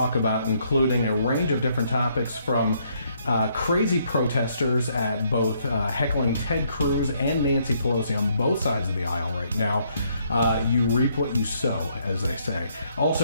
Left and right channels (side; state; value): both; inverted; correlation -0.71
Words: about, including a range of different topics from crazy protesters at both heckling Ted Cruz and Nancy Pelosi on both sides of the aisle right now. You reap what you sow, as they say.